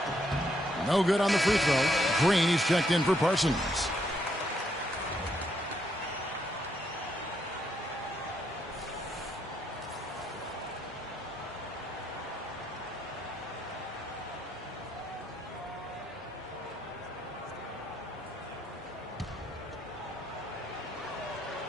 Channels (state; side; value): normal; both; correlation 0.75